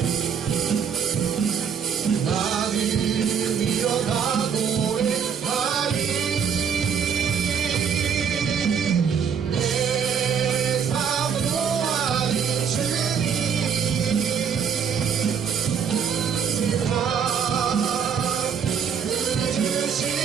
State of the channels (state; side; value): quieter; left; 7.2 dB